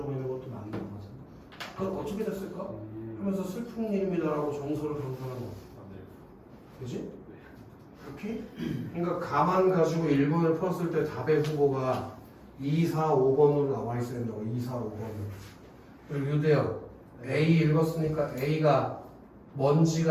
있는 것도 맞는 것 같은데. 그건 어떻게 됐을까? 하면서 슬픈 일입니다라고 정서를 강조하는 거. 맞아요. 그지? 이렇게? 그러니까 가만 가지고 1번을 풀었을 때 답의 후보가 2, 4, 5번으로 나와 있어야 된다고. 2, 4, 5번으로. 그리고 유대형 A 읽었으니까 A가 뭔지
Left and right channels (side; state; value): both; identical; correlation 1.00